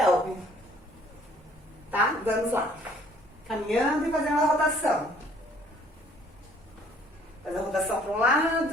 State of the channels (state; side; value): normal; both; correlation 0.59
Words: Tá? Vamos lá. Caminhando e fazendo a rotação. Faz a rotação para um